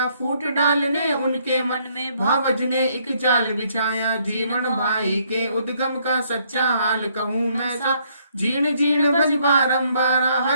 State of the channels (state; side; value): inverted; both; correlation -0.69